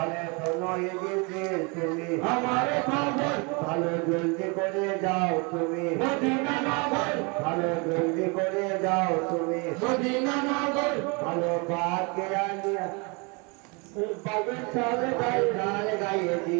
শোনো এ জিবরিল তুমি আমার খবর ভালো জলদি করে যাও তুমি মদিনা নগর ভালো জলদি করে যাও তুমি মদিনা নগর ভালো পাকে আনিয়া পাকের ছালে গায়ে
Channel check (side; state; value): left; quieter; 30.8 dB